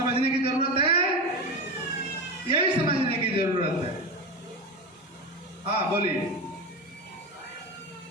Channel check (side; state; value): both; normal; correlation 0.21